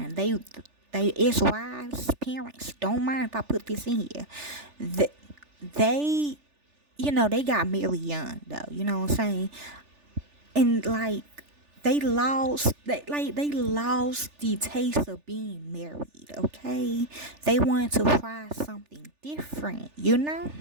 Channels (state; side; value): late; left; 3.4 ms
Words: They ex-wives, parents don't mind if I put this in here. They, they got married young though. You know what I'm saying? And like, they lost the taste of being married, okay? They wanted to try something different,